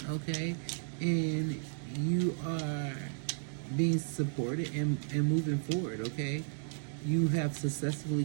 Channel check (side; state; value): left; silent; digital silence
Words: okay? And you are being supported and moving forward, okay? You have successfully